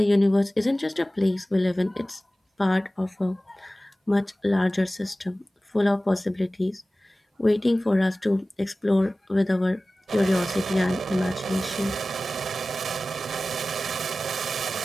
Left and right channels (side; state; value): both; normal; correlation 0.97